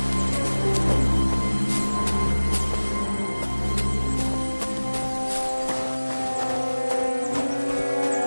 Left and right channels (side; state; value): both; inverted; correlation -1.00